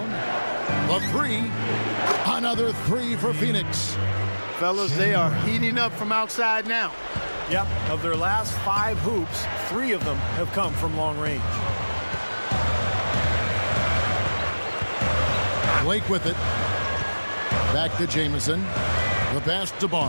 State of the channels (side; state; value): both; inverted; correlation -1.00